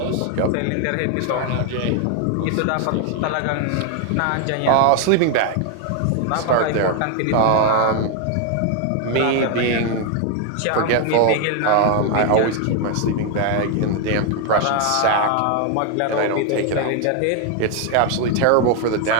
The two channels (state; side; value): different; both; correlation 0.00